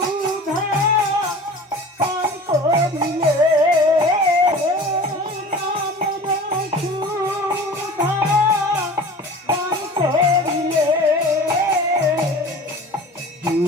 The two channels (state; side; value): normal; both; correlation 0.40